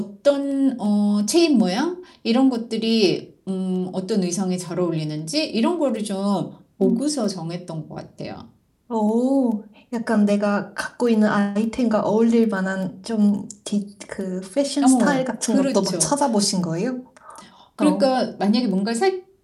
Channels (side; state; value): both; identical; correlation 1.00